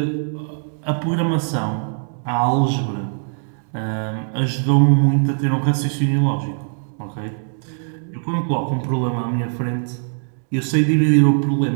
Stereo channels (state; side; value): silent; left; digital silence